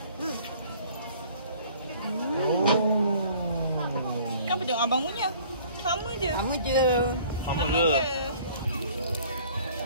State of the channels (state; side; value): inverted; both; correlation -0.53